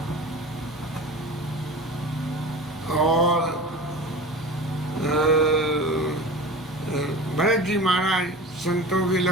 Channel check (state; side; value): normal; both; correlation 0.34